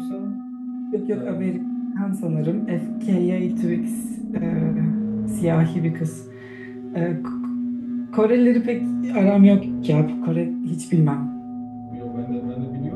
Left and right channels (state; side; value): identical; both; correlation 1.00